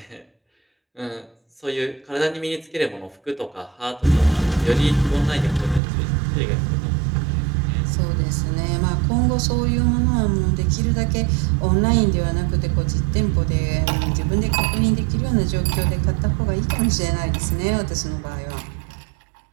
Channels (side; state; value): left; drops out; at 5.8 s